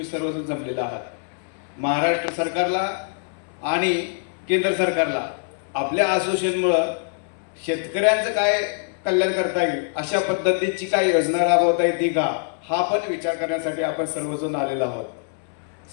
सर्वजण जमलेला आहात. महाराष्ट्र सरकारला आणि केंद्र सरकारला आपल्या असोसिएशनमुळं शेतकऱ्यांचं काय कल्याण करता येईल, अशा पद्धतीची काय योजना राबवता येते का, हा पण विचार करण्यासाठी आपण सर्वजण आलेलो आहोत.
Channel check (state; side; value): silent; right; 63 dB below the other